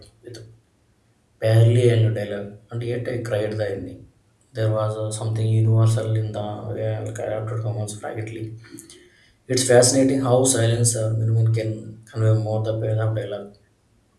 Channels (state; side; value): identical; both; correlation 1.00